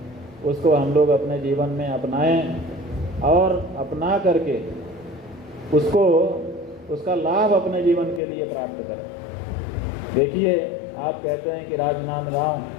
उसको हम लोग अपने जीवन में अपनाएं और अपना करके उसका लाभ अपने जीवन के लिए प्राप्त करें। देखिए, आप कहते हैं कि राजनांदगांव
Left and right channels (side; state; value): right; drops out; at 8.2 s